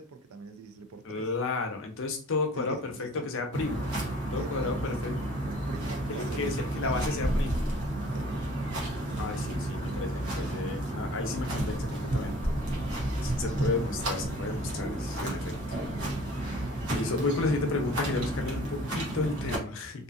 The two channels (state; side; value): normal; both; correlation 0.49